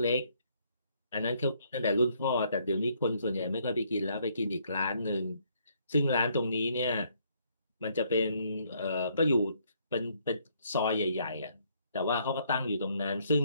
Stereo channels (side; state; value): both; inverted; correlation -0.69